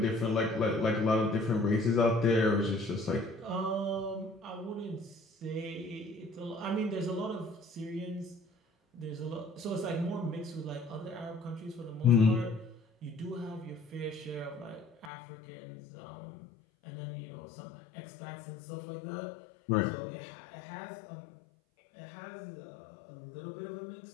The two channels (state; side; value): drops out; right; at 15.1 s